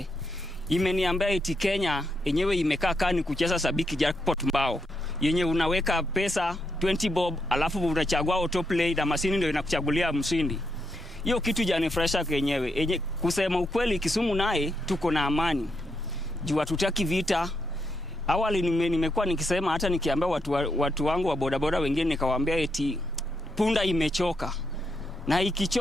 Imeniambia eti Kenya yenyewe imekaa kani kucheza sabiki jackpot mbao. Yenye unaweka pesa 20 bob alafu unachagua autoplay na mashini ndio inakuchagulia mshindi. Hiyo kitu janifresha kenyewe. Kusema ukweli Kisumu naye tuko na amani. Juu hatutaki vita. awali nimekuwa nikisema, hata nikiambia watu wangu wa bodaboda wengine, nikawaambia eti punda imechoka, na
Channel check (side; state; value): both; normal; correlation 0.81